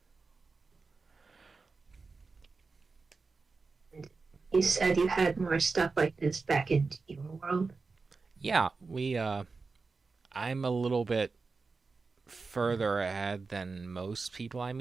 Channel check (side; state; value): left; quieter; 4.3 dB